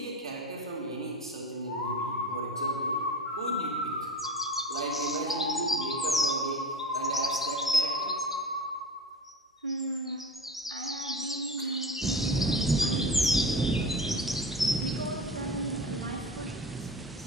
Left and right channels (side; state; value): both; normal; correlation 0.31